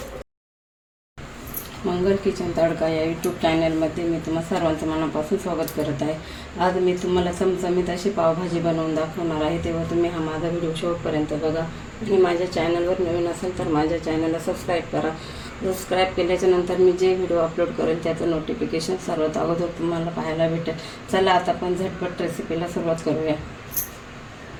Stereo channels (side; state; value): both; identical; correlation 1.00